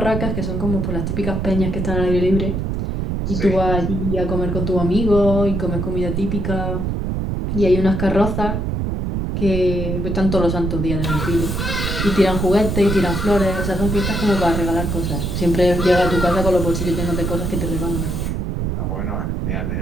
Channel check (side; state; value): right; noise; rumble, 1 dB below the sound